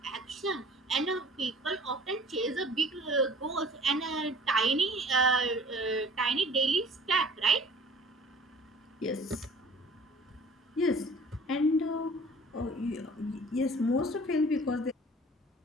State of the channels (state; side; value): normal; both; correlation 0.49